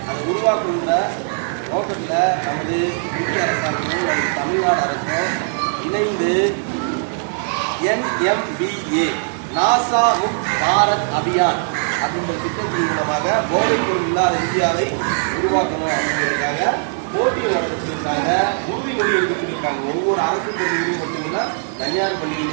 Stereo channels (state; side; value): silent; left; 66 dB below the other